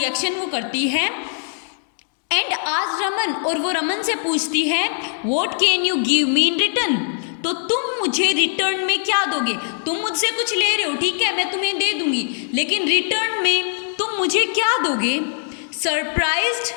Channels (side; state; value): right; silent; digital silence